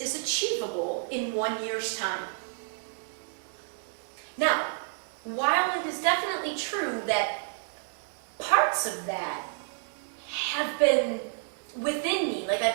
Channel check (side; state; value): left; silent; digital silence